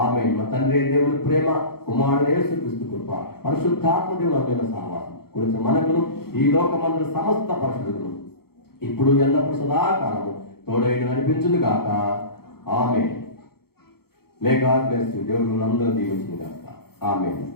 మా తండ్రి దేవుని ప్రేమ, కుమారుడు యేసుక్రీస్తు కృప, పరిశుద్ధాత్మ దేవుని సహవాసం గురించి మనకును ఈ లోకమందు సమస్త పరిశుద్ధులను ఇప్పుడు ఎల్లప్పుడు సదాకాలము తోడైన నడిపించును గాక. ఆమేన్. May God bless you. దేవుడు అందరూ దీవించును గాక. ఆమేన్.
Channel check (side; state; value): right; late; 0.95 ms